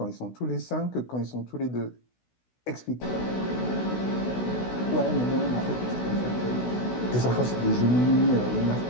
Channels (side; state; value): right; late; 16 ms